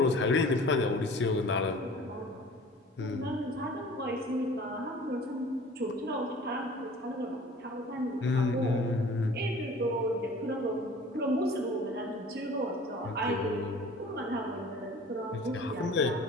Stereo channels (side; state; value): both; normal; correlation 0.46